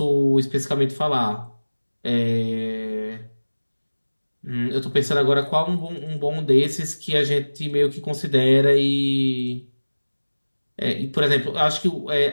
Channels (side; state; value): both; inverted; correlation -1.00